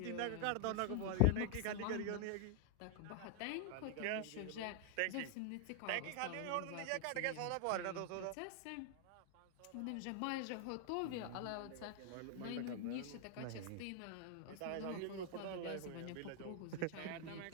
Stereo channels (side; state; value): both; different; correlation 0.00